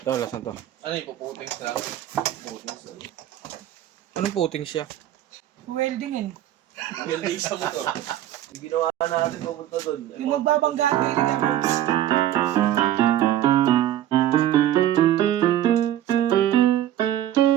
Ito, lasan to. Ano yung puputings lang? Puputings lang. Anong puting siya? Weldingin. Welding sa motor. Yung ginawa natin papunta doon. Yung magbabanggaan kayo ni Gabriels.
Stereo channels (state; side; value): quieter; left; 12.3 dB